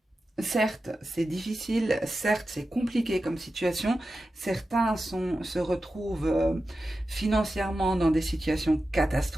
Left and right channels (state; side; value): normal; both; correlation 0.92